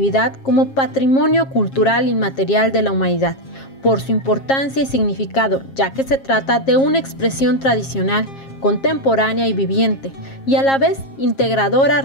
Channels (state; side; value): late; right; 7.4 ms